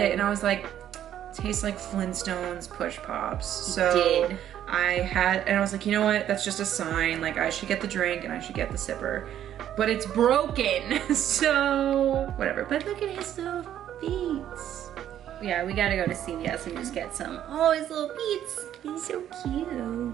and I was like, tastes like Flintstones Push Pops. So and I was like, you know what? That's just a sign. Like I should get the drink and I should get the Sipper. But it's broken, so whatever. But look at his little feet. Yeah, we gotta go to CVS and just get some. Oh, his little feet. He's so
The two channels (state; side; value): quieter; left; 10.9 dB